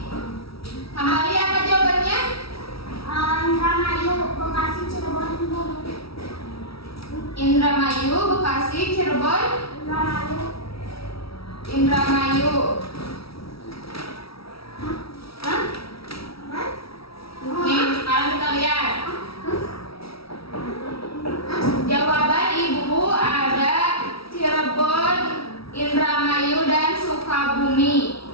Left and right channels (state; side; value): late; right; 0.76 ms